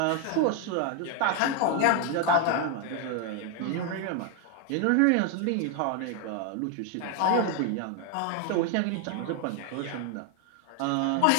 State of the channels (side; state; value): both; different; correlation 0.01